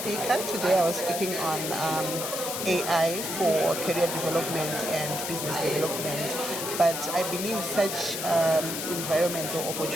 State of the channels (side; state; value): left; noise; hiss, 4 dB below the sound